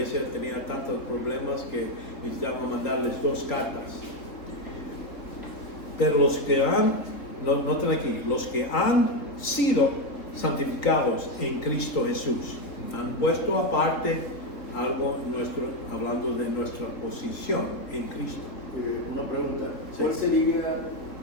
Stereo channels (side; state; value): right; late; 3.7 ms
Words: tenía tantos problemas que necesitaban mandarles 2 cartas. Pero los que noten aquí, los que han sido santificados en Cristo Jesús, han puesto aparte algo hablando de nuestra posición en Cristo. Una pregunta, Sí. ¿cuál sería